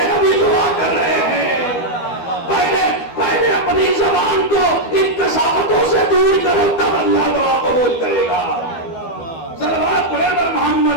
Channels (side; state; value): right; late; 12 ms